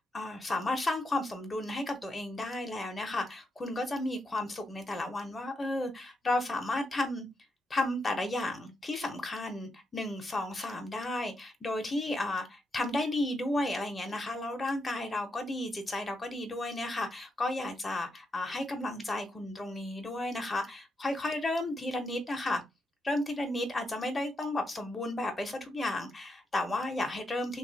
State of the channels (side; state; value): both; normal; correlation 0.82